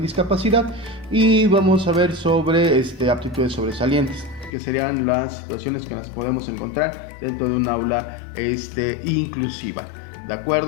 discapacidad y vamos a ver sobre aptitudes sobresalientes, que serían las situaciones que nos podemos encontrar dentro de un aula inclusiva. ¿De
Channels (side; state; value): right; drops out; at 4.5 s